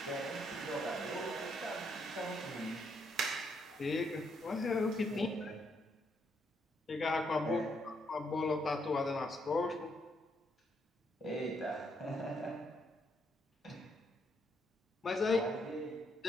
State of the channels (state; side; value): normal; both; correlation 0.75